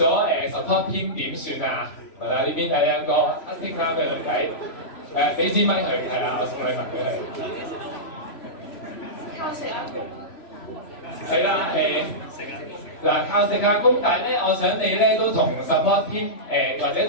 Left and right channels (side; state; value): right; late; 3.0 ms